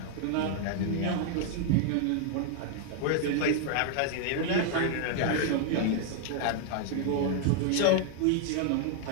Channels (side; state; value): both; different; correlation 0.00